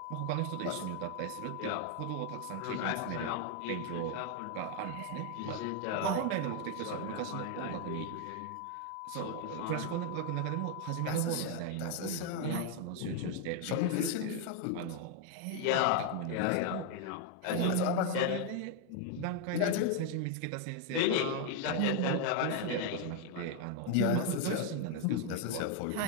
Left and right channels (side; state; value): both; different; correlation 0.01